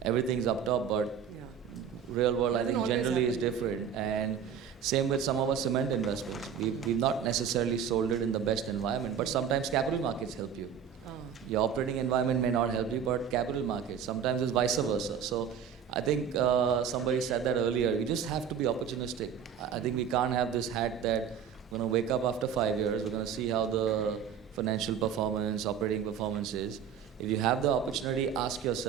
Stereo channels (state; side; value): quieter; left; 7.8 dB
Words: up top, but real world, I think, generally is different. And same with some of our cement investments. We've not necessarily sold it in the best environment, but sometimes capital markets help you. Your operating environment may not help you, but capital markets, sometimes it's vice versa. So I think somebody said that earlier, you just have to be opportunistic. I think we can't have this hat that we're going to wake up after 5 years, we're going to see how the financial performance, operating performance is. If you have the opportunity, ask